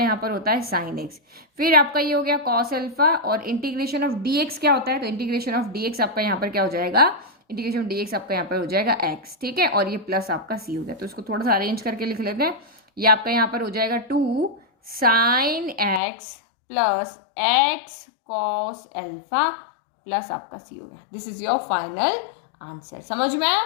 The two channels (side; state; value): right; drops out; at 16.0 s